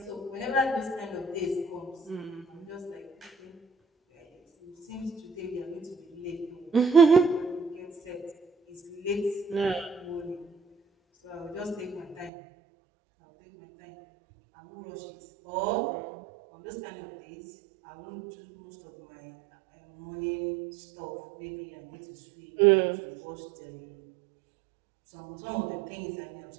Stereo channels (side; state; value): left; drops out; at 12.3 s